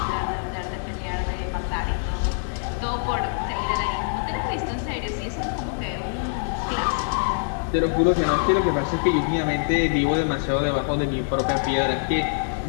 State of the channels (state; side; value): silent; right; 62 dB below the other